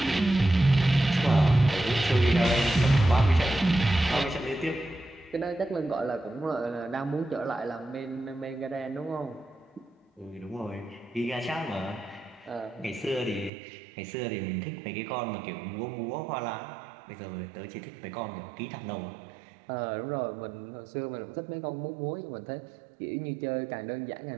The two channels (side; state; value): left; drops out; at 13.5 s